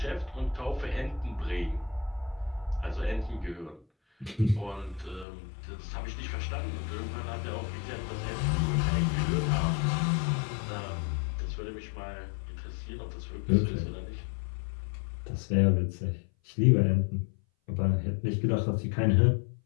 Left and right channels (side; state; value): right; drops out; at 5.2 s